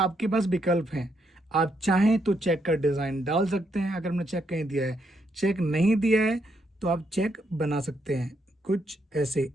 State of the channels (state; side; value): normal; both; correlation 0.77